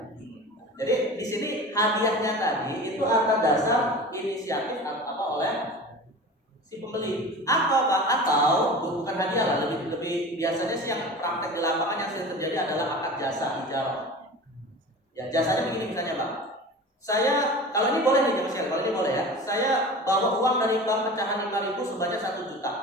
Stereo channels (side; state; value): both; normal; correlation 0.35